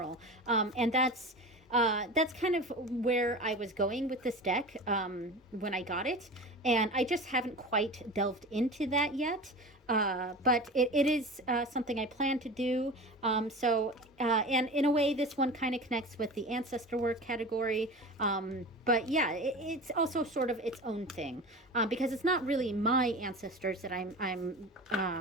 and that's kind of where I was going with this deck when I got it, and I just haven't quite delved into that yet. But it is something I plan to do. And in a way, this one kind of connects with the ancestor work category. But yeah, it's also sort of its own thing, because it's not really my ancestors that I'm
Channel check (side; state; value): both; normal; correlation 0.32